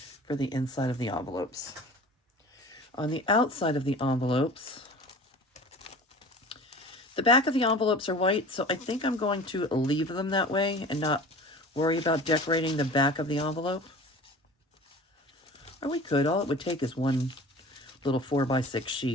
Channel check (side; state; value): both; normal; correlation 0.40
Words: the inside of the envelopes. On the outside of the envelopes, the back of the envelopes are white, so I think I'm going to leave them that way and not worry about decorating the back of the envelope. Or we could. All it would take is one little 4x6